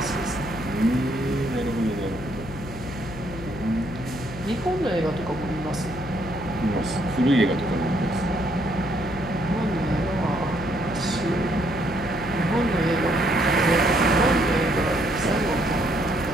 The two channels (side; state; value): left; noise; hum, 12 dB below the sound